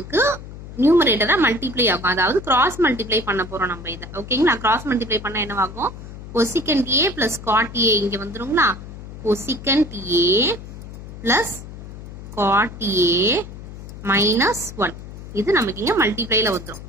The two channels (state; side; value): noise; left; hum, 13 dB below the sound